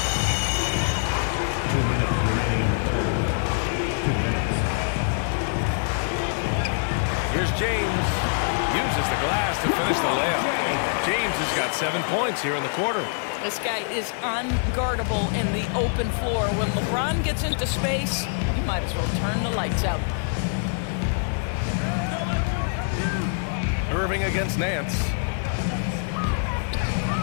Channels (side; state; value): right; silent; digital silence